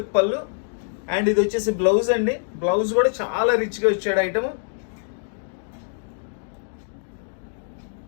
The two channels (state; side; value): silent; right; digital silence